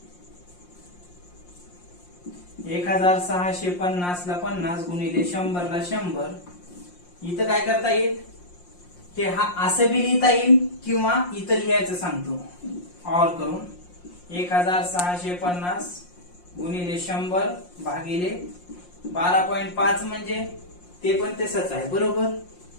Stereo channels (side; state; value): right; late; 5.6 ms